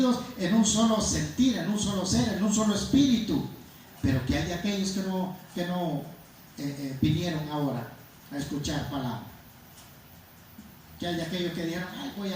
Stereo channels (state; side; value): identical; both; correlation 1.00